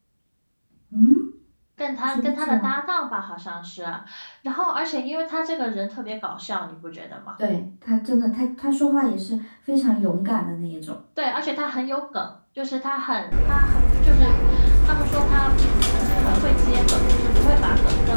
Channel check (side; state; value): both; inverted; correlation -1.00